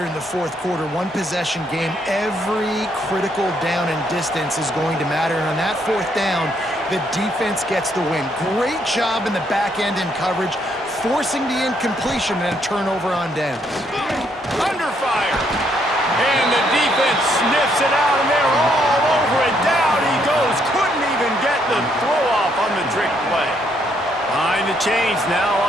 in the 4th quarter. One possession game. Every critical down and distance is going to matter. And on that 4th down, the defense gets the win. Great job in the back end in coverage, forcing the incompletion and a turnover on downs. Under fire. And the defense sniffs it out, and they're all over it. Down he goes. Couldn't even get the throw off on the trick play. Behind the chains now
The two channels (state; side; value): normal; both; correlation 0.72